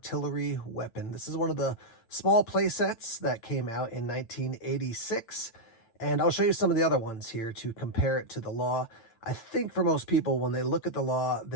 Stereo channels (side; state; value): right; late; 8.9 ms